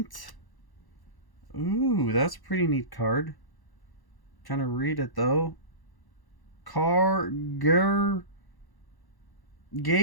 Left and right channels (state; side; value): late; right; 1.1 ms